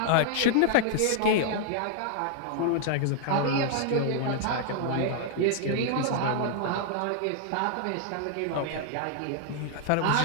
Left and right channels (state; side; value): different; both; correlation 0.00